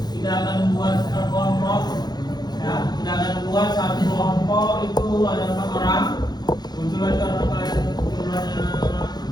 kita akan buat kelompok. Ya, kita akan buat satu kelompok itu ada 4 orang. Kebetulan karena kalian jumlahnya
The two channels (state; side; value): late; right; 0.20 ms